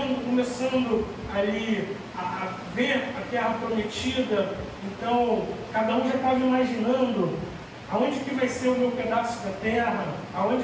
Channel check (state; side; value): identical; both; correlation 1.00